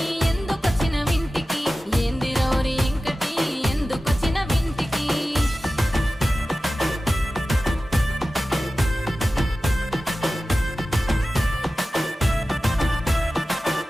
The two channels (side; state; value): both; normal; correlation 0.95